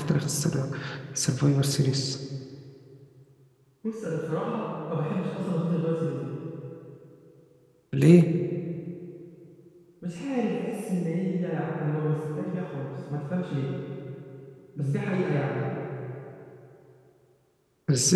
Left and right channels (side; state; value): both; identical; correlation 1.00